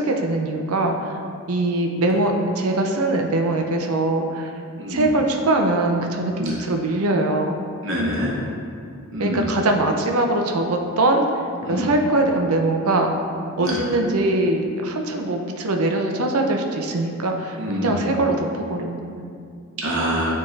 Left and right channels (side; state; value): both; normal; correlation 0.16